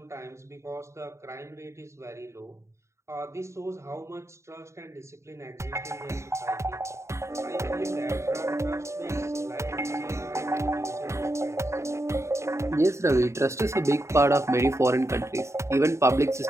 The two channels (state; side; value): late; left; 0.14 ms